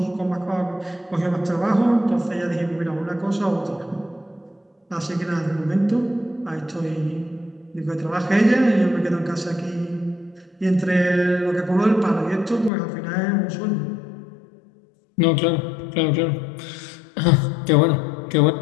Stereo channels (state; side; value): drops out; right; at 12.7 s